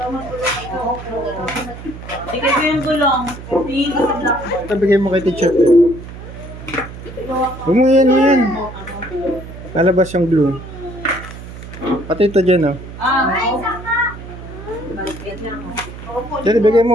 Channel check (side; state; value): right; noise; hum, 13 dB below the sound